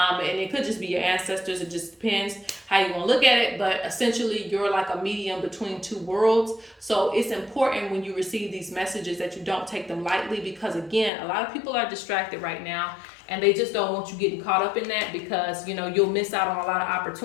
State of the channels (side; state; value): right; drops out; at 11.1 s